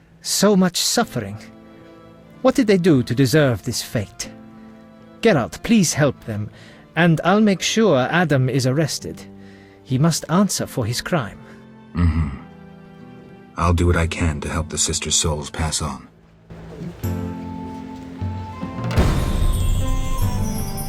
So much suffering. What did they do to deserve this fate? Geralt, please help them, and I'll make sure Adam is arrested. He must answer for his crime. I'll do what I can to help the sisters' souls pass on.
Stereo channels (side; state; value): both; identical; correlation 1.00